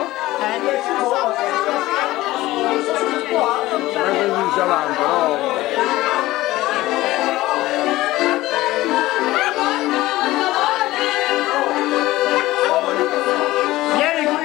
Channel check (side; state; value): right; quieter; 17.4 dB